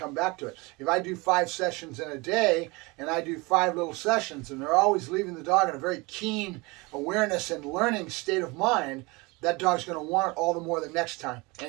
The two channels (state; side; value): quieter; left; 25.3 dB